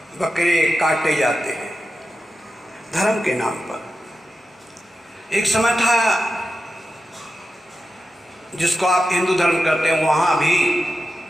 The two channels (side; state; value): both; normal; correlation 0.91